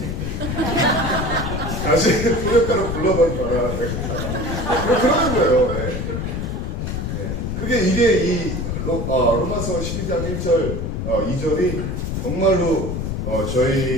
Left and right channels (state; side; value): noise; left; rumble, 3 dB below the sound